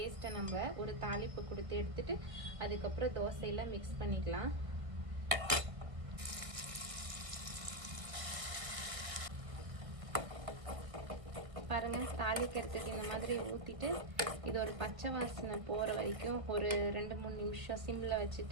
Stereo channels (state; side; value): late; left; 1.7 ms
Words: நம்ம ஒரு தாளிப்பு கொடுத்து எடுத்துட்டு அதுக்கப்புறம் தோசையில் மிக்ஸ் பண்ணிக்கலாம். பாருங்கள், தாளிக்கிறதுக்கு இந்த மாதிரி ஊற்றிட்டு இது ஒரு பச்சை வாசனை போகிற வரைக்கும் ஒரு 2-3 நிமிஷம் சிம்மில்